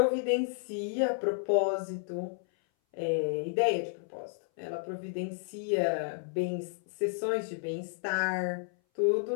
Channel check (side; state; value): right; silent; 57 dB below the other